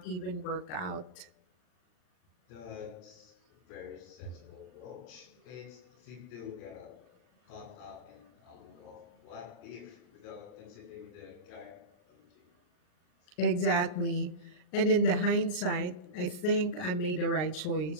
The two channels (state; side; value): late; right; 39 ms